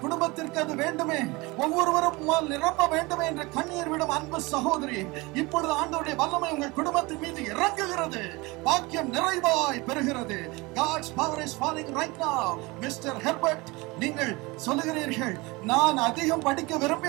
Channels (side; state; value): left; quieter; 23.9 dB